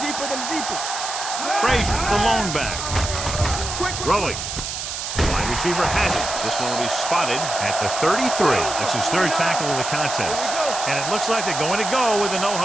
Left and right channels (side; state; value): right; noise; hiss, 5 dB below the sound